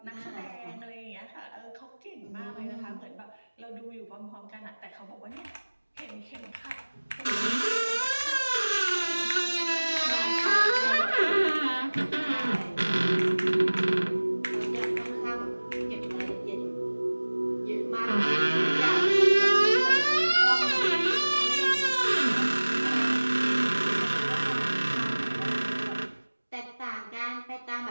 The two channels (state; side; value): inverted; both; correlation -1.00